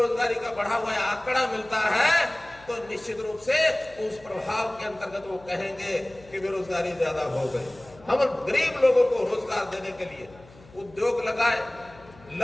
का बढ़ा हुआ आंकड़ा मिलता है, तो निश्चित रूप से उस प्रभाव के अंतर्गत वो कहेंगे कि बेरोजगारी ज्यादा हो गई। हम गरीब लोगों को रोजगार देने के लिए उद्योग लगाए,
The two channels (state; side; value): noise; left; hum, 23 dB below the sound